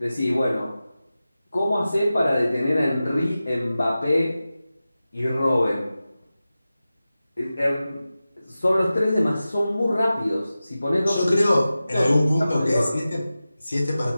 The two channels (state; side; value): inverted; both; correlation -0.95